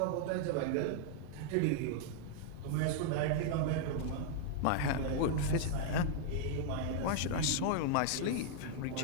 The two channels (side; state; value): both; different; correlation -0.01